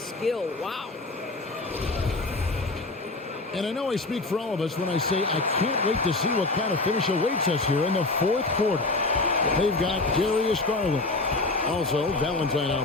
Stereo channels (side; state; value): right; quieter; 3.2 dB